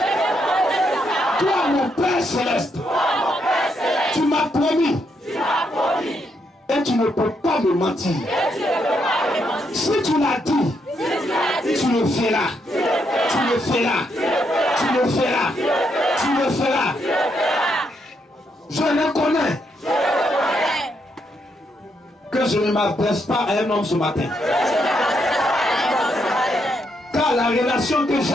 Toi, mon Père Céleste, tu m'as promis. Et tu ne peux pas me mentir. Si tu l'as dit, tu le feras. Tu le feras. Tu le feras. Tu le feras. Je reconnais que je ne m'adresse pas à un homme ce matin. Car la relation que j'ai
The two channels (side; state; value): both; normal; correlation 0.78